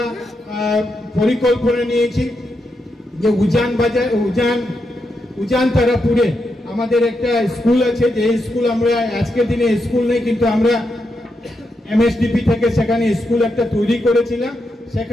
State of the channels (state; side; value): normal; both; correlation 0.84